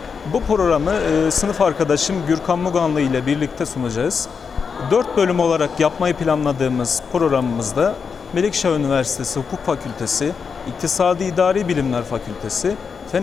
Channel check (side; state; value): right; quieter; 5.8 dB